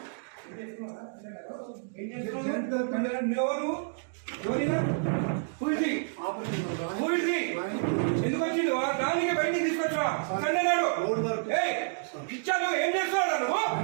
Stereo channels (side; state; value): left; silent; digital silence